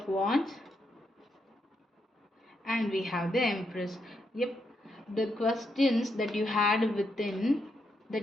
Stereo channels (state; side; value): normal; both; correlation 0.80